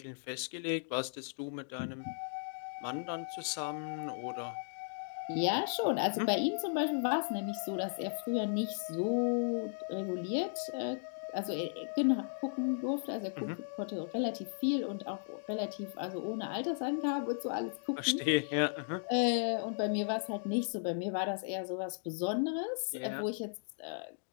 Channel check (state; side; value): silent; right; digital silence